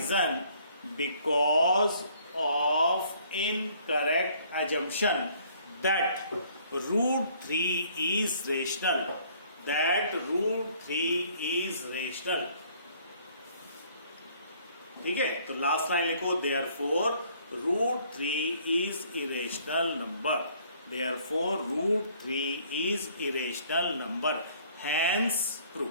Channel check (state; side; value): inverted; both; correlation -0.60